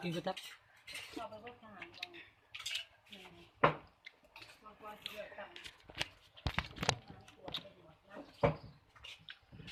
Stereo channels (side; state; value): both; identical; correlation 1.00